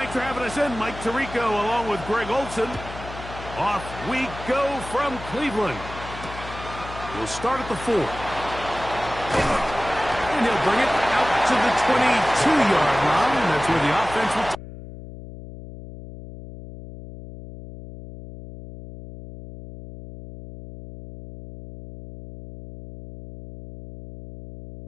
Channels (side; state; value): left; noise; hum, 13 dB below the sound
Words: Thanks for having us in, Mike Tirico, along with Greg Olson. Off we go from Cleveland. We'll start at the 4. And he'll bring it out to the 22-yard line. That's where the offense will